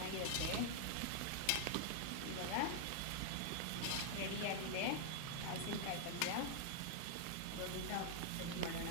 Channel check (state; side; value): different; both; correlation 0.00